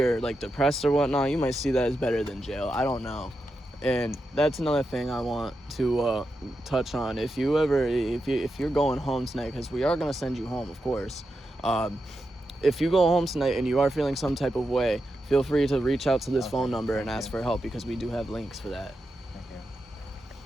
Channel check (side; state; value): both; normal; correlation 0.87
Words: like depressed or whatnot. You might see that as better than jail. I don't know. And that's another thing I want to touch on. If you're going home tonight, because we are going to send you home, of course. if you go home tonight and you are feeling some type of way, feel free to reach out to this phone number and ask for help, because we do have links for that.